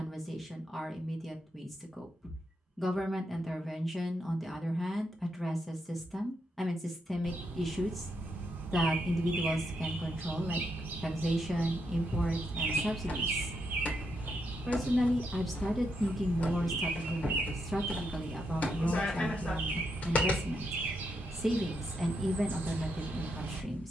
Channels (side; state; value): both; normal; correlation 0.81